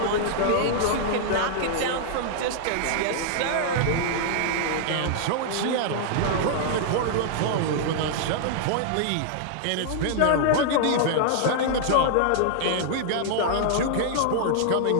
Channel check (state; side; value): different; both; correlation -0.01